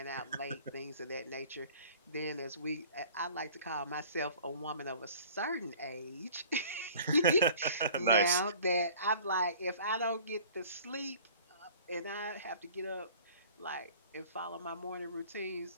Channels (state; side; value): inverted; both; correlation -0.49